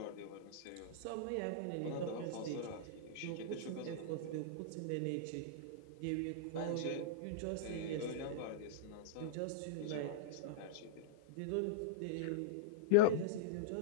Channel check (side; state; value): both; different; correlation -0.02